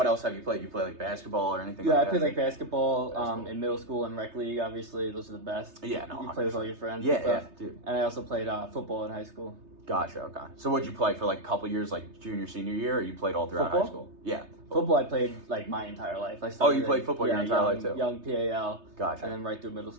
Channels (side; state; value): left; late; 3.3 ms